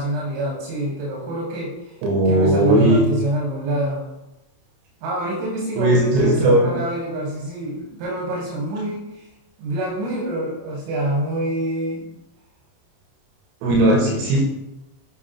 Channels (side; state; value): left; late; 30 ms